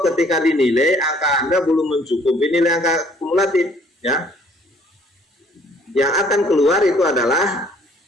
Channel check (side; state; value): both; normal; correlation 0.59